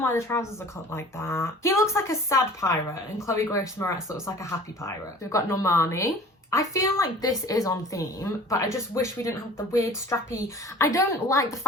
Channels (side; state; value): both; normal; correlation 0.45